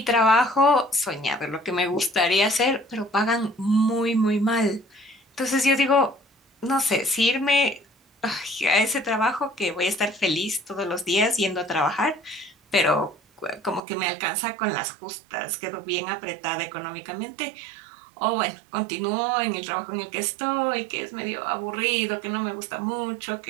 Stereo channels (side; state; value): left; drops out; at 13.8 s